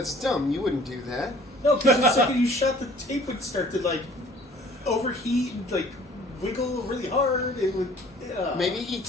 dumb. You wouldn't do that. No, because the second you shot, the tape would start to like overheat and like wiggle really hard. It would. Maybe he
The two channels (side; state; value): both; normal; correlation 0.52